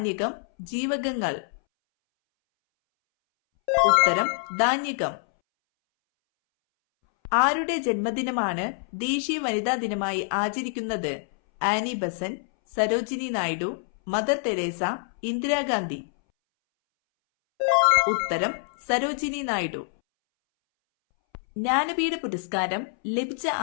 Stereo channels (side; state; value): right; silent; 61 dB below the other